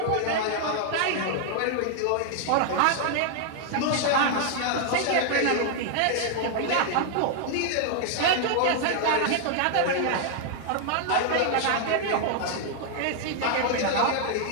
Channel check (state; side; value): different; both; correlation 0.00